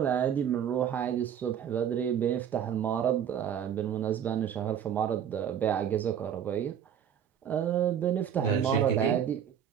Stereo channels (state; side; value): quieter; left; 8.9 dB